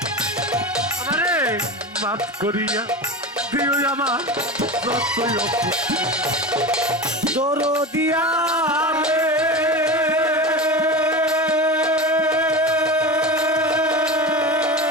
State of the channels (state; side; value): normal; both; correlation 0.26